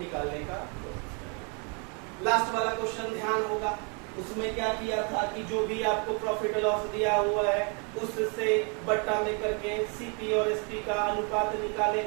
का। लास्ट वाला क्वेश्चन ध्यान होगा, उसमें क्या किया था कि जो भी आपको प्रॉफिट लॉस दिया हुआ है उससे बट्टा में करके सीपी और एसपी का अनुपात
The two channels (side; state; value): left; quieter; 36.3 dB